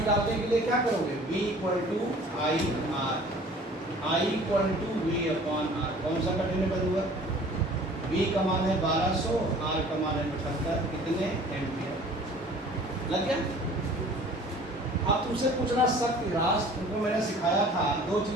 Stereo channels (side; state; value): both; normal; correlation 0.49